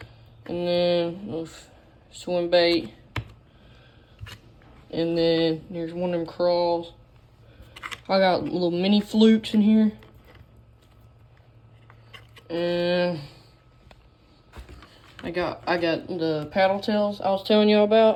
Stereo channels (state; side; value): identical; both; correlation 1.00